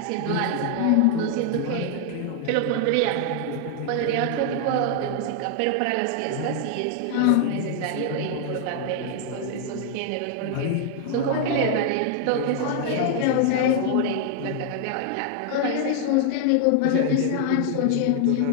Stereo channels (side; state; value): both; different; correlation 0.00